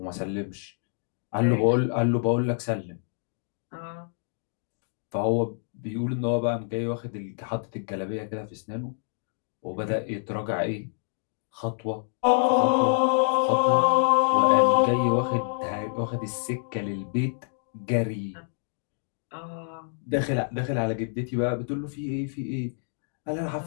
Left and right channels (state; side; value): silent; right; digital silence